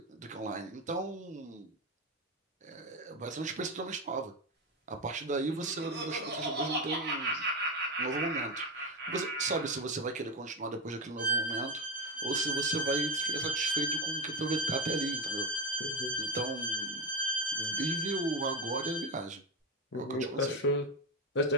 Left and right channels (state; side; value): normal; both; correlation 0.14